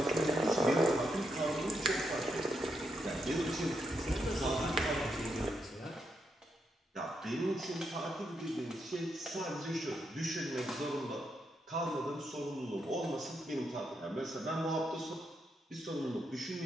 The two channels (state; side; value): normal; both; correlation 0.81